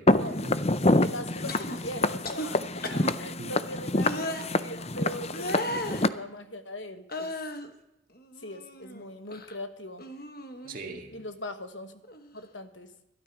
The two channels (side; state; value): both; normal; correlation 0.34